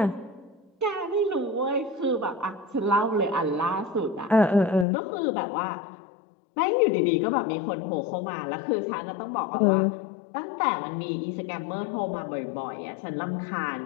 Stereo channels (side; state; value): right; drops out; at 4.9 s